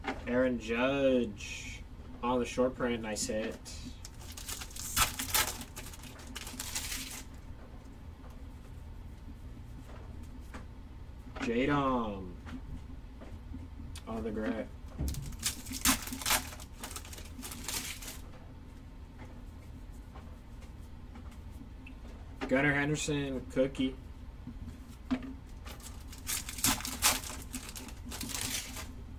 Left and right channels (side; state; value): both; identical; correlation 1.00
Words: Aaron Judge on the short print. Nice hit. Jadom on the gray. Gunnar Henderson cookie.